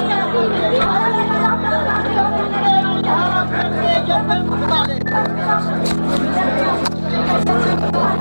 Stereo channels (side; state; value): both; inverted; correlation -1.00